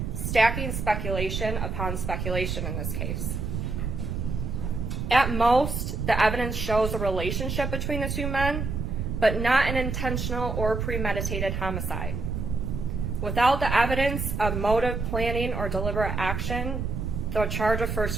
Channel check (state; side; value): noise; right; rumble, 3 dB below the sound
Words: stacking speculation upon speculation in this case. At most, the evidence shows a relationship between the two men, but not an intentional or premeditated homicide. Without the evidence of motive, planning, or deliberate action, the charge of